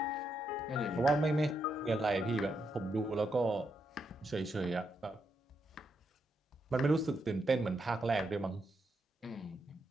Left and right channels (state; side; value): normal; both; correlation 0.81